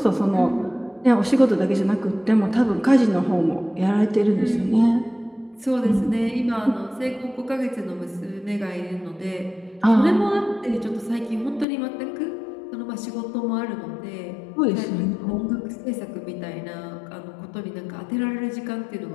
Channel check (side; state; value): right; drops out; at 11.7 s